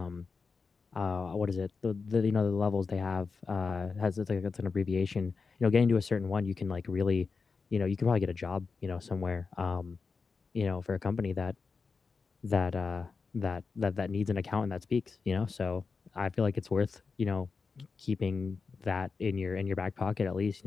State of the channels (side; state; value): right; quieter; 4.8 dB